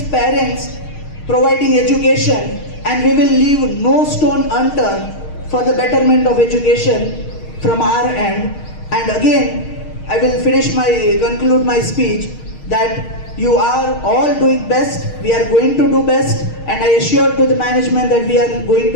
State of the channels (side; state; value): right; late; 6.5 ms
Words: parents, providing education, and we will leave no stone unturned for the betterment of education from our end. And again, I will conclude my speech that you are all doing best, we are going to do best, and I assure to the management that we are going